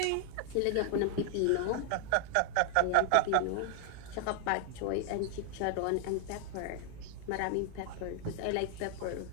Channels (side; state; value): both; different; correlation 0.00